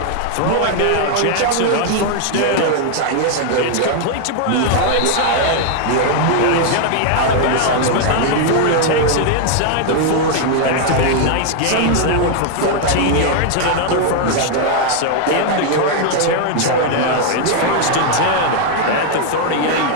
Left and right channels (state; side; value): different; both; correlation 0.00